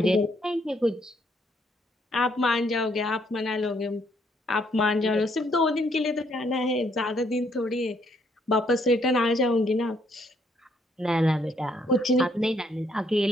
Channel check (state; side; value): normal; both; correlation 0.70